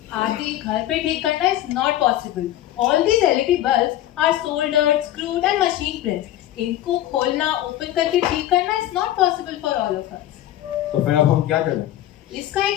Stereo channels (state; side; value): quieter; right; 13.4 dB